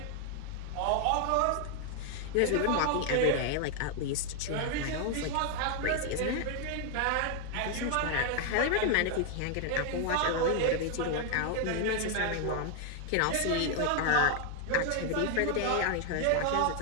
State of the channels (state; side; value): different; both; correlation 0.00